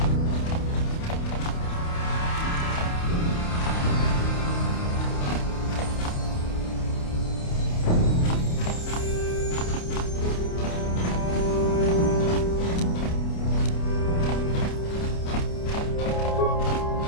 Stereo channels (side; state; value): right; late; 29 ms